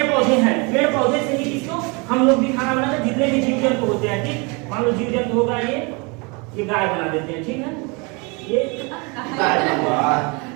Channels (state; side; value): quieter; left; 29.7 dB